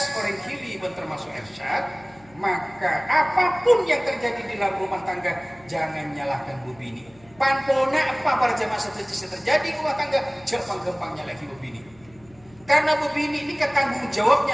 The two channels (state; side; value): noise; left; hum, 27 dB below the sound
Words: orang kili termasuk Ersyad, maka apapun yang terjadi di dalam rumah tangga jangan nyalahkan bu bini. Panpona apa para jamaah setuju terjadi di rumah tangga jangan gampang nyalahi bu bini. Karena bu bini ini tanggung